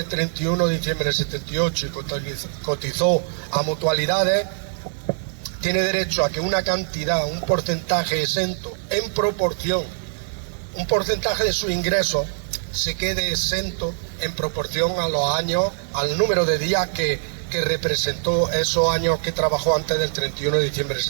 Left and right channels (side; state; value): left; silent; 63 dB below the other